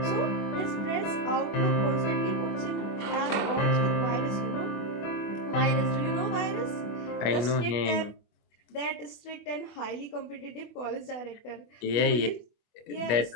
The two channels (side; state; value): right; late; 24 ms